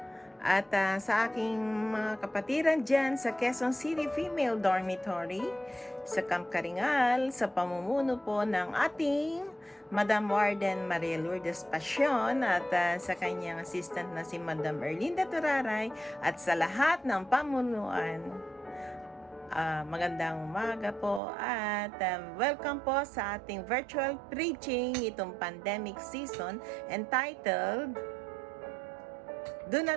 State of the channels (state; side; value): drops out; left; at 21.2 s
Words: at sa aking mga kapatiran dyan sa Quezon City Female Dormitory sa Camp Karingal sa pamumuno po ng ating Madam Warden Maria Lourdes Passion at sa kanyang assistant na si Madam Erlinda Turaray at sa lahat ng pamunuan. Magandang umaga po at welcome po sa ating virtual preaching itong pandemic season entitled Do